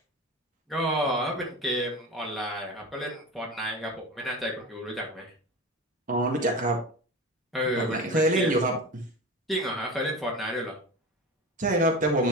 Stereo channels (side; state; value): both; normal; correlation 0.30